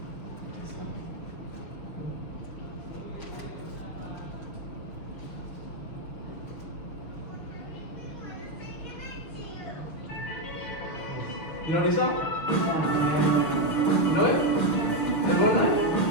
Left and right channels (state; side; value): late; right; 6.4 ms